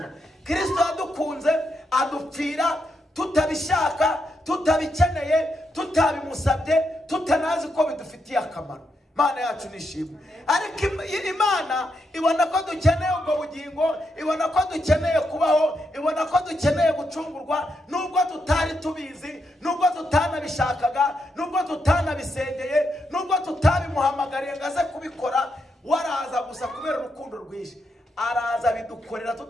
Kristo yadukunze adupfira tutabishaka, tutabikeneye, tutabimusabye, tutanazi ko bidufitiye akamaro. Imana yacu nishimwe. Ariko Imana ibona ko dukeneye ubwo bugingo, ibona ko dukeneye kubaho, ibona ko dukeneye gucungurwa, nubwo tutari tubizi, nubwo tutanabishakaga, nubwo tutanabisengeye, nubwo tutabimuhamagariye ngo aze kubikora. Waraza gusa kubera urukundo rwinshi, araza bidukorera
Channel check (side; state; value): both; normal; correlation 0.82